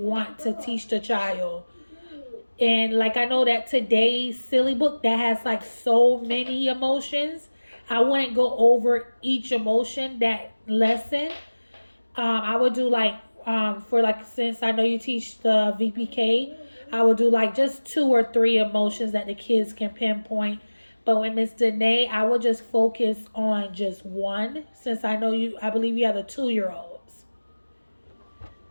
to teach the child. And like I know that today's silly book that has like so many emotions, I wouldn't go over each emotion that lesson. I would do like for like since I know you teach the VPK, I would do like just 2 or 3 emotions that the kids can pinpoint. But with Miss Danae, I would just focus on just one since I know you. I believe you have the 2 year olds.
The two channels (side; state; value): both; inverted; correlation -1.00